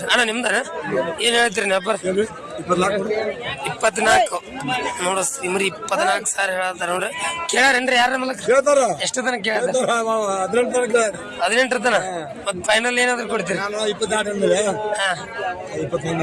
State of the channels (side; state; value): both; identical; correlation 1.00